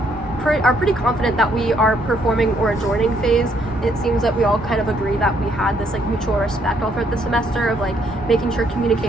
are pretty confident that we are performing or adjourning phase. It seems that we all kind of agree that we had this like mutual respect all throughout the semester of like making sure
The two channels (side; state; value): both; normal; correlation 0.70